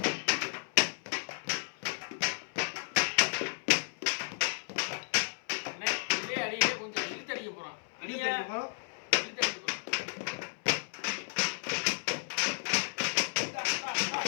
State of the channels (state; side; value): silent; right; 56 dB below the other